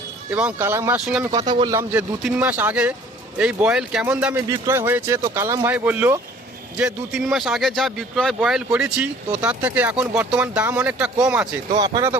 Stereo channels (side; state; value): both; normal; correlation 0.52